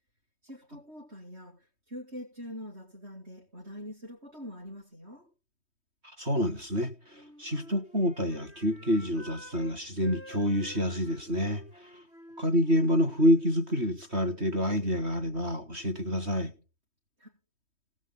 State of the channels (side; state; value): left; late; 3.2 ms